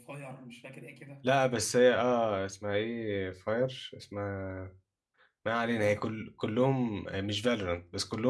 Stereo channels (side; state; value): both; identical; correlation 1.00